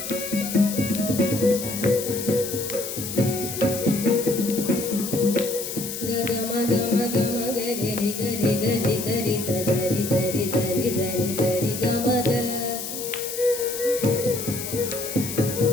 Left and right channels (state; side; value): noise; left; hiss, 7 dB below the sound